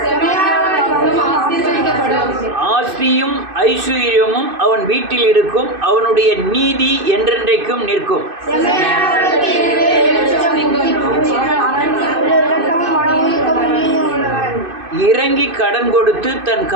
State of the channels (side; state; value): left; late; 2.6 ms